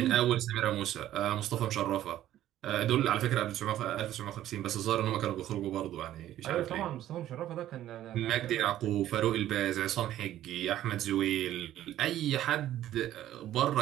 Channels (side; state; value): left; quieter; 12.9 dB